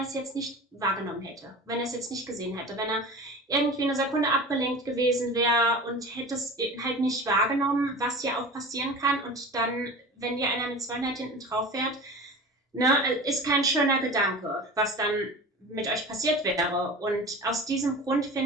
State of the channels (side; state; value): both; normal; correlation 0.35